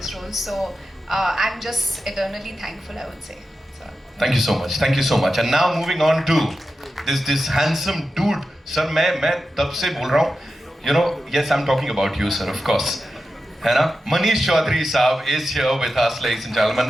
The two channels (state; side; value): normal; both; correlation 0.91